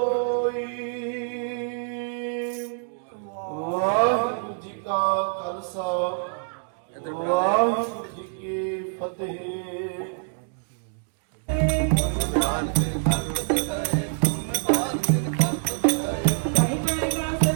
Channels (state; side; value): silent; left; digital silence